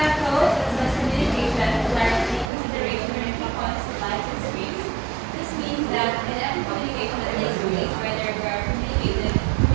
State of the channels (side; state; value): left; drops out; at 2.5 s